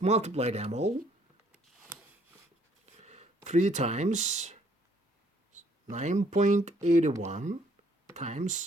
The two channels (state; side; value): normal; both; correlation 0.64